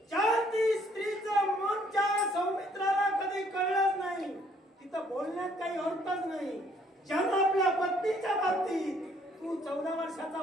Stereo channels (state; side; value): normal; both; correlation 0.64